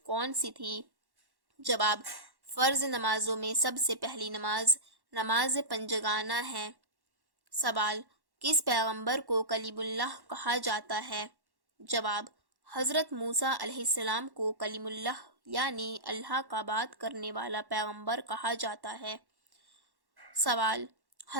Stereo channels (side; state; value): left; late; 1.1 ms